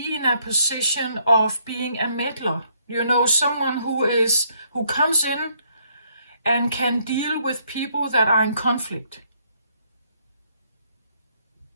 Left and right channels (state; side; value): inverted; both; correlation -0.69